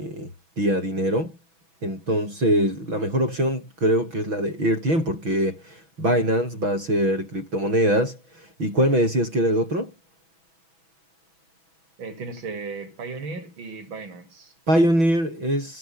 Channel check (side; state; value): left; late; 6.1 ms